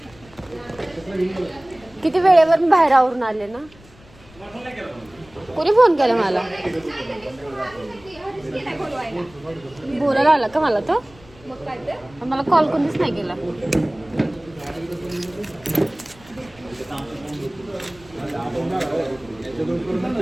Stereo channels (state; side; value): noise; left; rumble, 24 dB below the sound